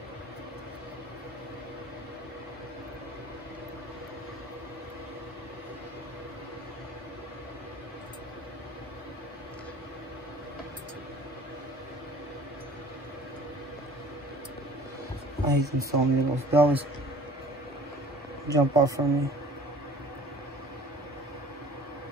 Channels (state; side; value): normal; both; correlation 0.47